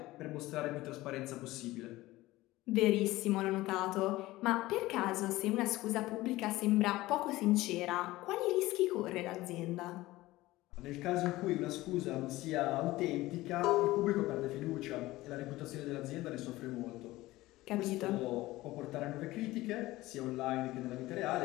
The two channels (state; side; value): quieter; right; 18.0 dB